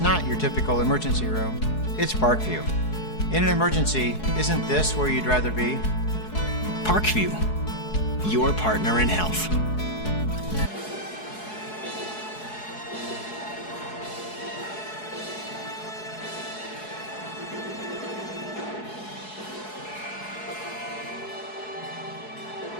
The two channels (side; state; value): right; late; 4.7 ms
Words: your typical emergency room. It's Parkview. In an emergency, isn't this where you'd rather be? Parkview, your partner in health.